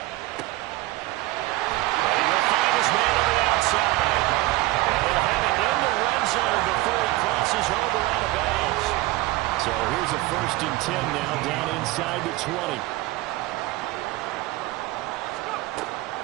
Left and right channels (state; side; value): quieter; left; 18.9 dB